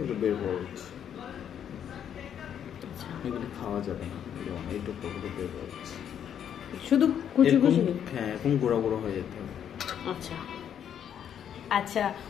বের করে দিচ্ছি। এগুলো খাওয়া যাবে না, এইটুকু বের করে দিচ্ছি। শুধু কুচি কুচি? হ্যাঁ, এরকম গুঁড়ো গুঁড়ো হয়ে যেতে হবে। আচ্ছা আচ্ছা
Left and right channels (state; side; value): quieter; right; 9.0 dB